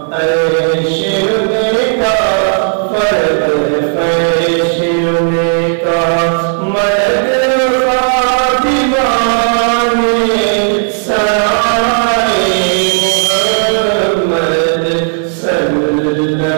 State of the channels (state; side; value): silent; left; 72 dB below the other